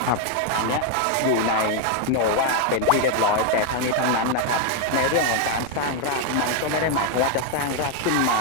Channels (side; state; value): both; different; correlation 0.01